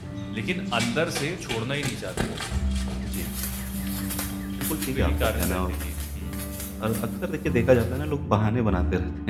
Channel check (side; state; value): both; identical; correlation 1.00